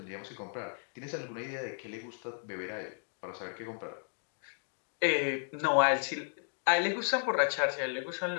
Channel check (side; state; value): right; silent; digital silence